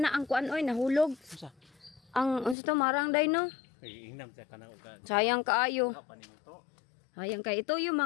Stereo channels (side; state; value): right; drops out; at 2.6 s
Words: na ang kuan, oy, nahulog. Ang unsa to marang day no? Sayang kaayo. Sayang kay ito yung